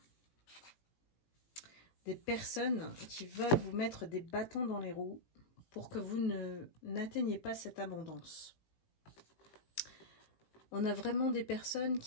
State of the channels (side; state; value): right; late; 18 ms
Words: Des personnes qui veulent vous mettre des bâtons dans les roues pour que vous n'atteigniez pas cette abondance. On a vraiment des personnes